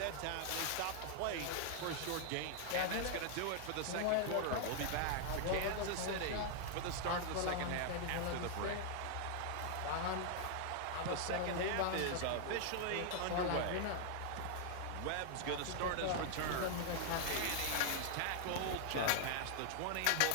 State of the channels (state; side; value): different; both; correlation 0.00